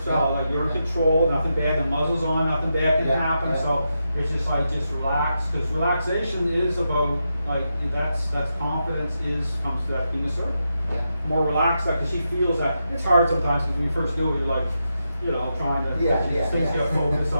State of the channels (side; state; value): both; inverted; correlation -0.86